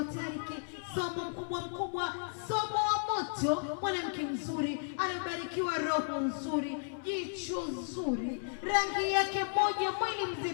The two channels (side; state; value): right; silent; 55 dB below the other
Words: Tariki. Somo mkubwa, somo wa moto, mwanamke mzuri, anabarikiwa roho nzuri, jicho zuri, rangi yake moja, mwili